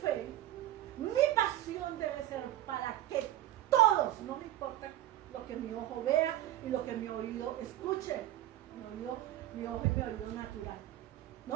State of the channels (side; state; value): left; quieter; 13.8 dB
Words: fe, mi pasión debe ser para que todos, no me importa lo que mi ojo vea y lo que mi oído escuche, mi ojo y mi oído natural,